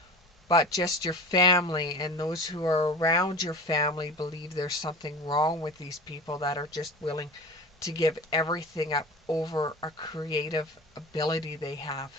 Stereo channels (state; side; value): normal; both; correlation 0.35